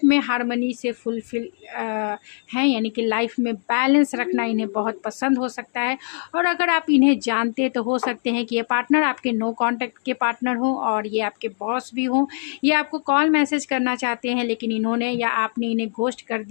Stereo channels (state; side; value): silent; right; digital silence